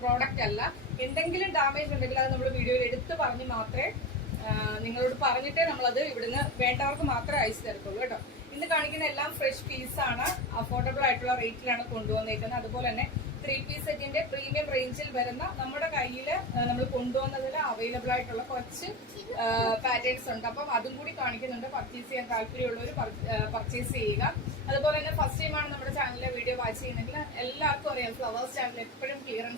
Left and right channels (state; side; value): normal; both; correlation 0.23